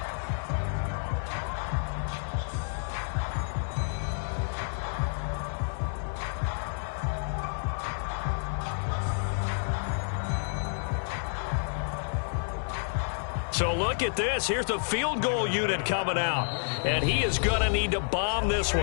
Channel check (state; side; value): silent; right; digital silence